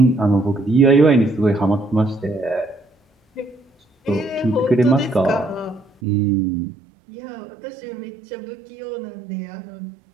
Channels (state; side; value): drops out; left; at 5.9 s